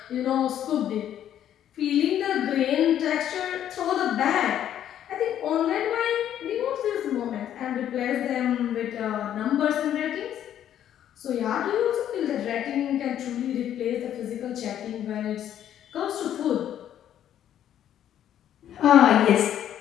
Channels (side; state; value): right; quieter; 10.7 dB